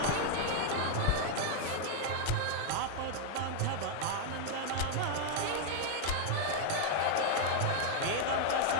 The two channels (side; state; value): both; different; correlation 0.00